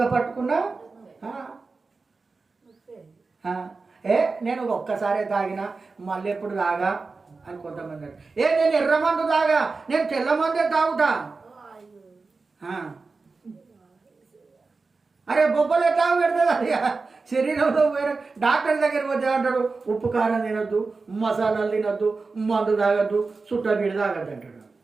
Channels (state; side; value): quieter; left; 4.1 dB